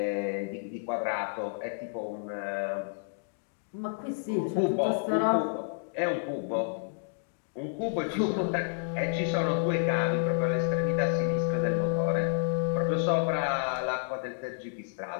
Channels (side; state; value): right; silent; digital silence